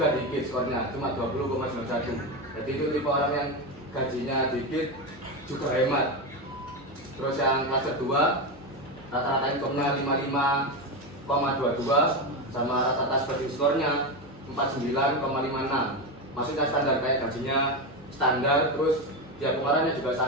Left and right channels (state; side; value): normal; both; correlation 0.15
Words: dikit skornya, cuma 20,91. Jadi itu tipe orang yang gajinya dikit juga hemat. Terus yang cluster 2 rata-rata income-nya 55,22 sama rata-rata spending skornya 49,56. Maksudnya standar, kayak gajinya standar, terus ya pengeluarannya juga